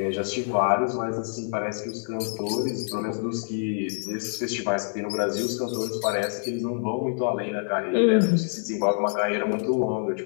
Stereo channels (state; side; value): silent; right; 61 dB below the other